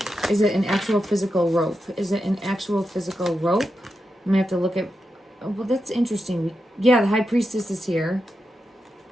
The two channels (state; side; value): normal; both; correlation 0.87